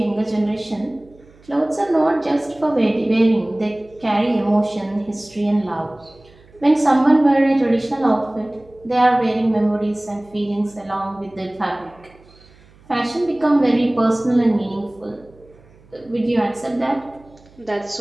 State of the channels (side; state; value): right; noise; hum, 27 dB below the sound